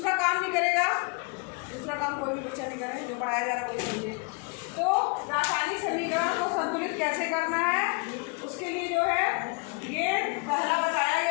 काम भी करेगा, दूसरा काम कोई भी बच्चा नहीं करे, जो पढ़ाया जा रहा है वही समझे। तो रासायनिक समीकरण को संतुलित कैसे करना है, उसके लिए जो है ये पहला बताया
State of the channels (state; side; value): quieter; right; 33.3 dB